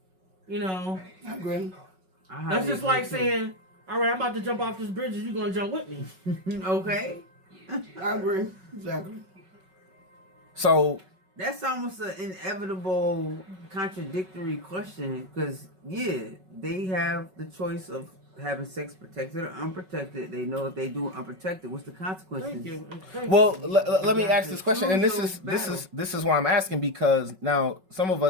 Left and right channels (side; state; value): left; late; 5.4 ms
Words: You know, I agree. that's just like saying, all right, I'm about to jump off this bridge. You going to jump with me? Okay. I agree. Exactly. So That's almost an inevitable contradictory question because, yeah, they have the choice of having sex protected or unprotected. They know if they do unprotected, what's the consequences? Thank you. Thank Well, you. let me ask this question, and Choose those this is why I'm asking, because now some of